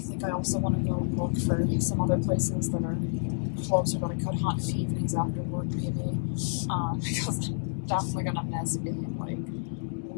I also want to go and look for some other places that are closer that I could hunt in the evenings after work, maybe, because I'm definitely going to miss being,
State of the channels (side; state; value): right; silent; 58 dB below the other